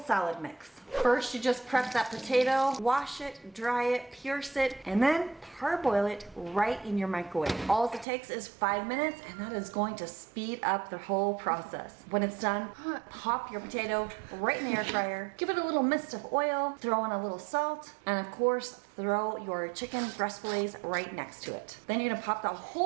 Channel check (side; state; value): left; drops out; at 8.1 s